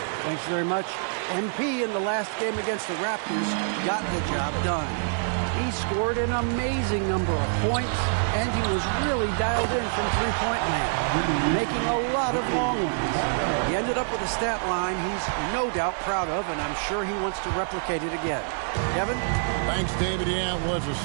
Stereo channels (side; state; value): left; silent; 61 dB below the other